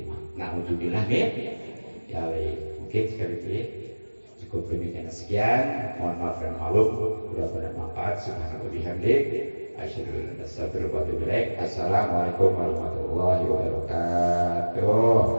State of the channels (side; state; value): both; inverted; correlation -1.00